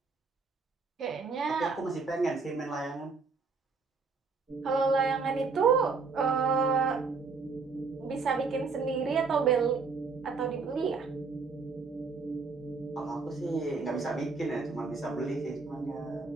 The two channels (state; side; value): quieter; left; 4.6 dB